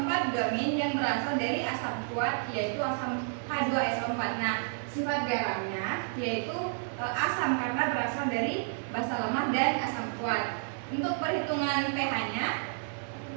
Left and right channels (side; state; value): left; silent; 57 dB below the other